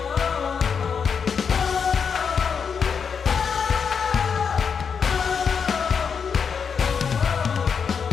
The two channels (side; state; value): right; quieter; 6.4 dB